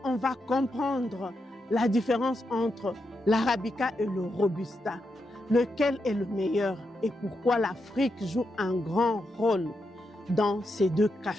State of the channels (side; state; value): both; normal; correlation 0.85